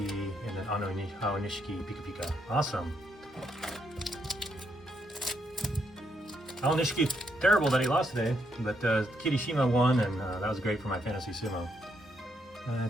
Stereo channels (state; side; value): normal; both; correlation 0.76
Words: and then Aonishiki, Pika Pika. Awesome. Aonishiki, terrible that he lost today, but Kirishima won, and that was great for my Fantasy Sumo.